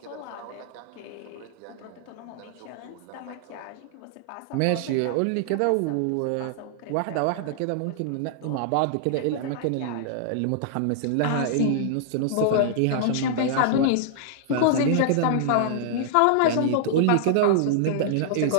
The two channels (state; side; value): different; both; correlation -0.01